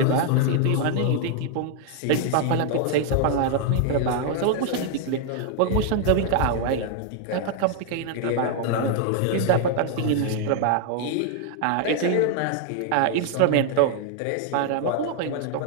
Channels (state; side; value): different; both; correlation 0.00